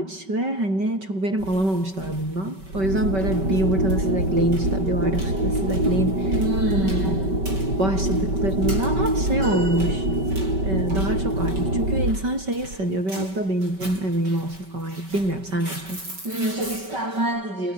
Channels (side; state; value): left; late; 5.2 ms